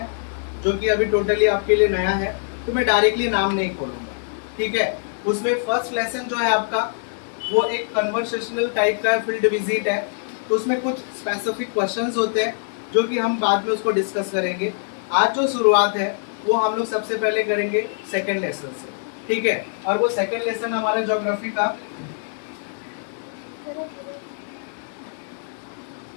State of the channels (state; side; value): silent; right; digital silence